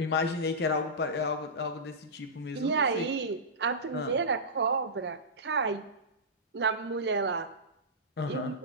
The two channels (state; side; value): normal; both; correlation -0.17